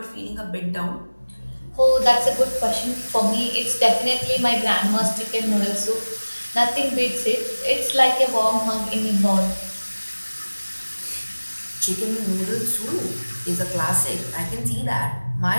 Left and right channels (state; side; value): inverted; both; correlation -1.00